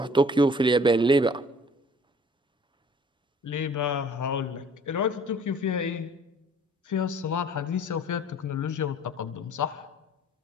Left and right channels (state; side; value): normal; both; correlation 0.53